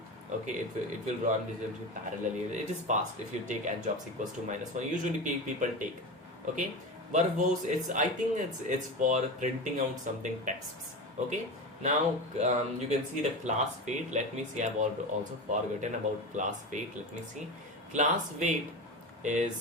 Okay, it will run this parallelly. It is fast if you take n jobs equals to -1. Usually people take. Okay, verbose, I think it's for printing out something texts. Okay, now you can see the class weight. Let me see, I've also forgotten about class weight. Let me see. Class weight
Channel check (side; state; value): both; normal; correlation 0.24